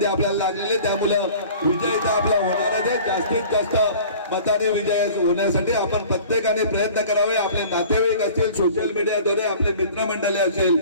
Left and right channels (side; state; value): both; inverted; correlation -0.45